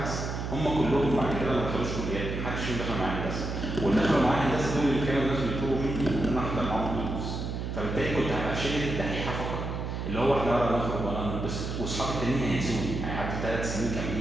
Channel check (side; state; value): right; noise; hum, 4 dB below the sound